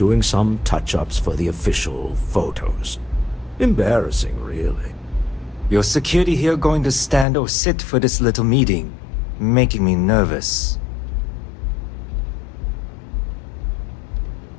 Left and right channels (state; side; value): drops out; right; at 7.2 s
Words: some touch-ups for the official photos. Embarrassing, really. Your security here going to stand or sit for this little meeting, making me nervous.